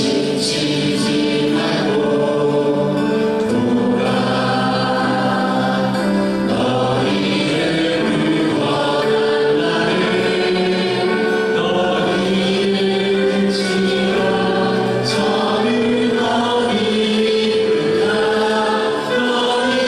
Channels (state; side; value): identical; both; correlation 1.00